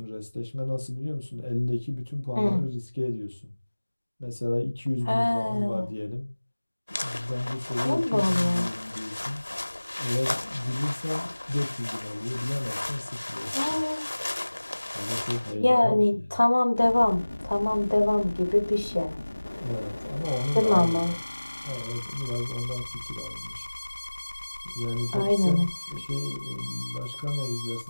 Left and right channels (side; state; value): both; inverted; correlation -1.00